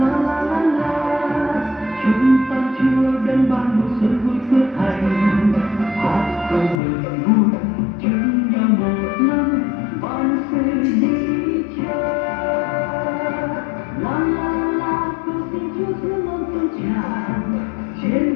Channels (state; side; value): drops out; right; at 6.8 s